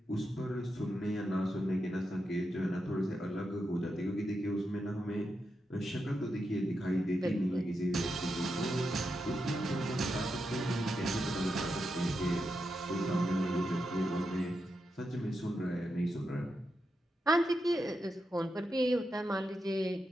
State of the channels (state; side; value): normal; both; correlation 0.86